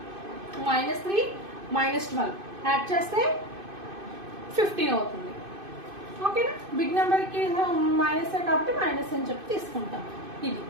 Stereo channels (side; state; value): left; late; 2.5 ms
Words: -3 -12 యాడ్ చేస్తే 15 అవుతుంది. ఓకేనా, బిగ్ నెంబర్కి మైనస్ కాబట్టి మైనస్ అని చెప్పి తీసుకుంటాం. ఇది